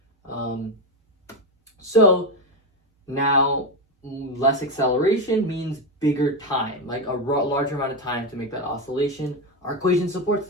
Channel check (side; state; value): both; normal; correlation 0.11